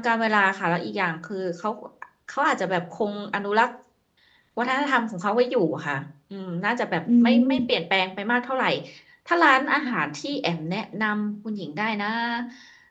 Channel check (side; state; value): both; identical; correlation 1.00